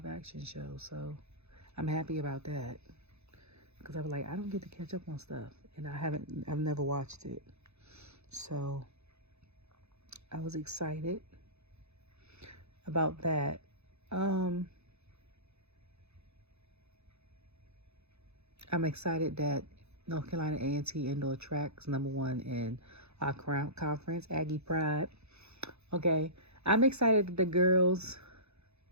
action show. So I'm happy about that. Because I was like, I don't get to catch up on stuff. And I've never watched it. So I was excited about that. I'm excited that North Carolina A&T indoor track's #1 in our conference, Aggie Pride. Okay, I'm excited that the girls,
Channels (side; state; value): left; late; 0.80 ms